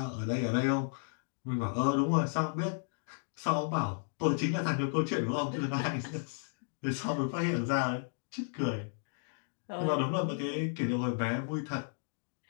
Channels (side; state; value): right; silent; digital silence